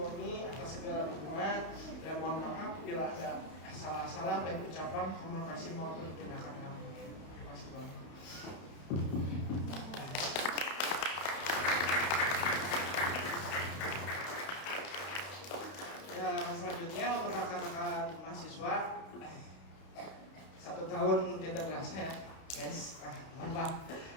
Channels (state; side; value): late; right; 31 ms